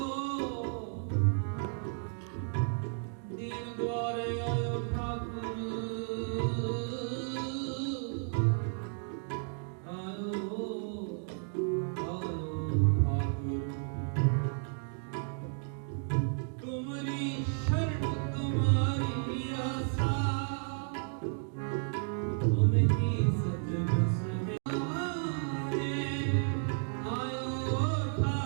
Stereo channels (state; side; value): silent; left; 56 dB below the other